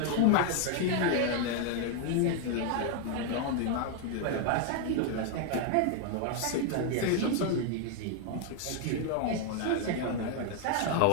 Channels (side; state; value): both; different; correlation 0.01